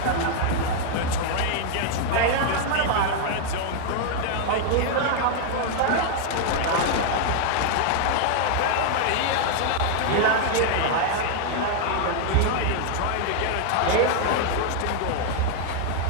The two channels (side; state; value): both; different; correlation 0.00